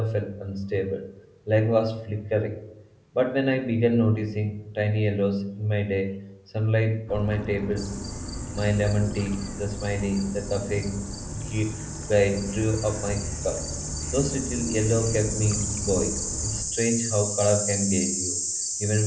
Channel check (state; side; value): identical; both; correlation 1.00